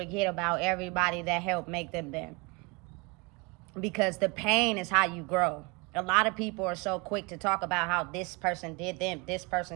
about everybody that helped make them there. Because the pain is how you grow. A lot of people are so quick to talk about how this person did them, this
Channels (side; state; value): left; quieter; 28.4 dB